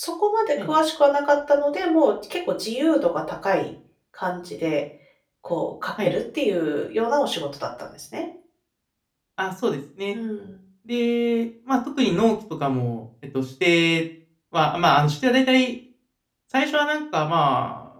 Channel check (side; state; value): both; identical; correlation 1.00